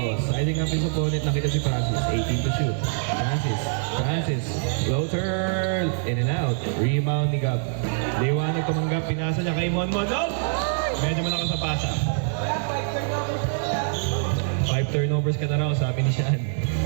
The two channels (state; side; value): silent; left; digital silence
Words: siding up his opponent. Nakita si Francis. 18 to shoot. Francis. Floater. In and out. Rebound ni Gab. Liwanag tumanggap. Pinasa niya kay Monmon. No! Medyo malakas sa pasa. 5 turnovers ka na raw, sabi ni Sean.